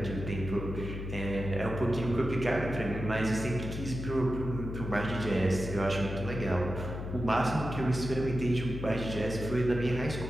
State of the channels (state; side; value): noise; left; hum, 6 dB below the sound